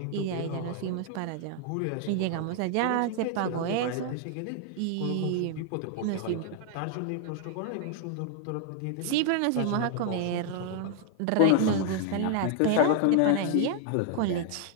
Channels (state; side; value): different; both; correlation 0.00